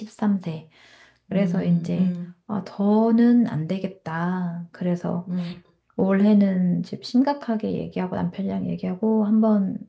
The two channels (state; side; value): identical; both; correlation 1.00